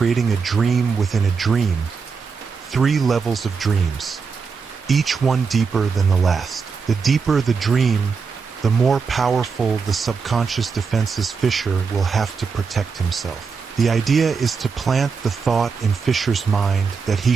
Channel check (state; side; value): quieter; left; 5.4 dB